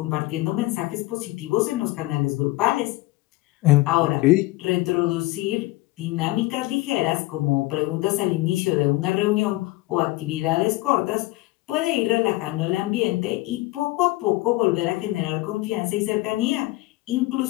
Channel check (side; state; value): right; quieter; 19.7 dB